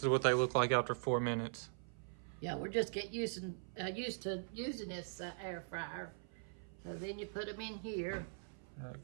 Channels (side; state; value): left; silent; 50 dB below the other